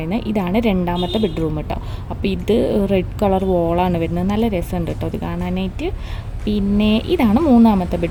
ഇതാണ് രണ്ടാമത്തെ ബെഡ്റൂം കേട്ടോ. അപ്പോൾ ഇത് റെഡ് കളർ വോളാണ് വരുന്നത്. നല്ല രസമുണ്ട് കേട്ടോ ഇത് കാണാനായിട്ട്. പിന്നെ ഇതാണ് മൂന്നാമത്തെ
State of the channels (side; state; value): both; identical; correlation 1.00